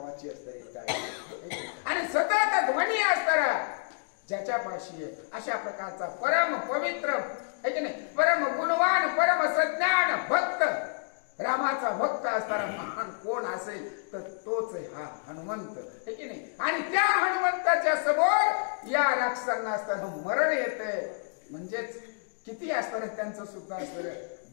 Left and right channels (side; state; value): right; silent; digital silence